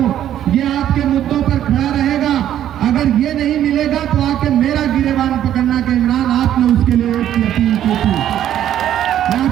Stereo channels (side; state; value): left; quieter; 11.2 dB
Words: ये आपके मुद्दों पर खड़ा रहेगा। अगर ये नहीं मिलेगा तो आके मेरा गिरेबान पकड़ना कि इमरान आपने उसके लिए वोट की अपील की थी। मैं